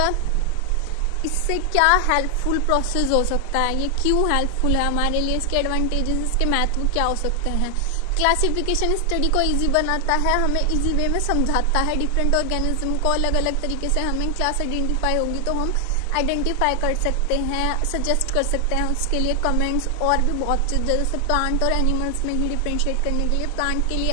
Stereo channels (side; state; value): both; different; correlation 0.00